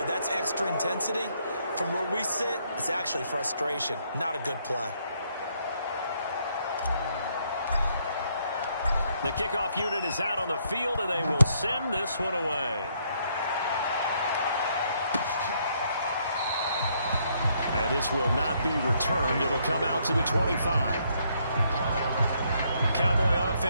that's extra intensity. From where we sit, it's actually frustration, not a good play. The kickoff unit is out on the field, and they will send this one away. And this will not be returned. It'll come out to the 25. Cowboy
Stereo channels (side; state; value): both; inverted; correlation -0.71